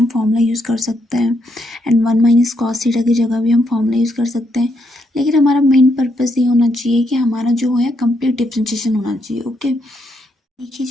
फॉर्मूला यूज़ कर सकते हैं, एंड 1 माइनस कॉस थीटा की जगह भी हम फॉर्मूला यूज़ कर सकते हैं, लेकिन हमारा मेन पर्पस ये होना चाहिए कि हमारा जो है कंप्लीट डिफ्रेंशिएशन होना चाहिए। ओके, देखिए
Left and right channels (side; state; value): both; normal; correlation 0.77